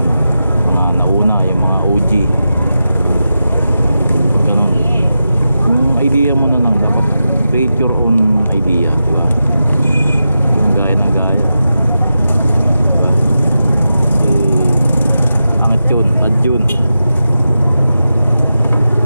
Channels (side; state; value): both; inverted; correlation -0.90